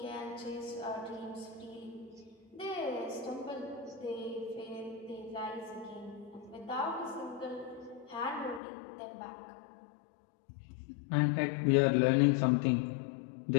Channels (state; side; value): drops out; right; at 8.6 s